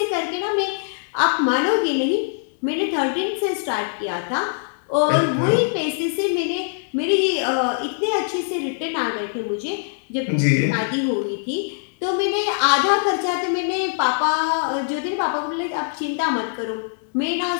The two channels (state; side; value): silent; right; digital silence